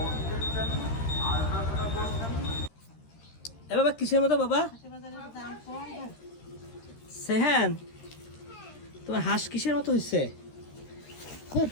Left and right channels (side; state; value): right; late; 13 ms